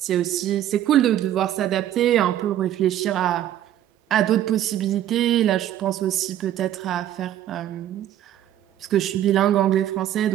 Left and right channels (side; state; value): left; quieter; 11.9 dB